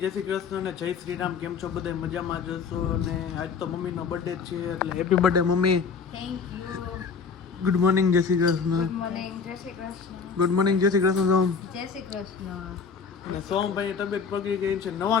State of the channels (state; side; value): quieter; right; 5.6 dB